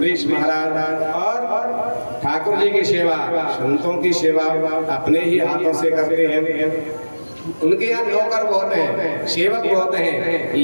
महाराज, और ठाकुर जी की सेवा, संतों की सेवा अपने ही हाथों से करते हैं। उनके यहाँ नौकर बहुत हैं, सेवक बहुत हैं,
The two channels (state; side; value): inverted; both; correlation -1.00